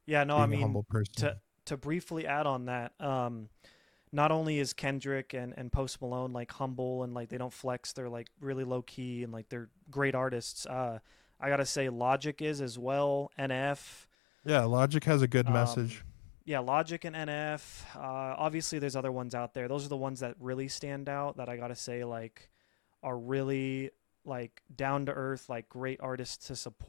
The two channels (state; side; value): drops out; right; at 14.1 s